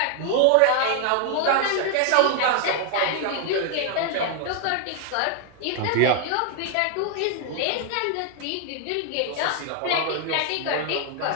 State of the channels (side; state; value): both; different; correlation 0.00